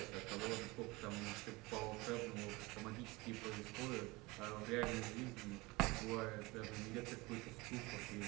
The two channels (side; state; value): left; quieter; 23.2 dB